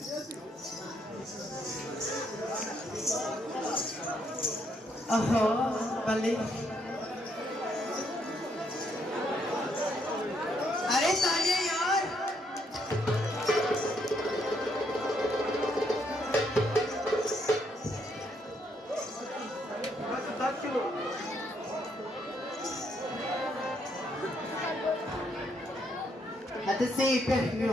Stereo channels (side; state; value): both; normal; correlation 0.73